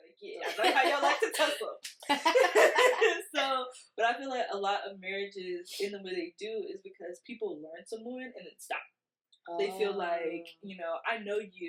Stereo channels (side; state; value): both; identical; correlation 1.00